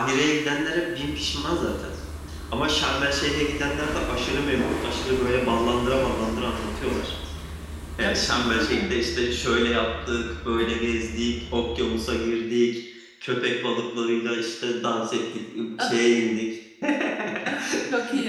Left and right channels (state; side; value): identical; both; correlation 1.00